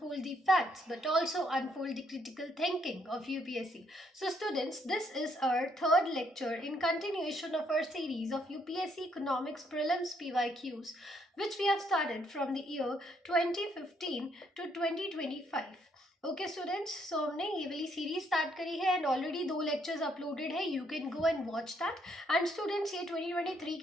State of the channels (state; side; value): normal; both; correlation 0.71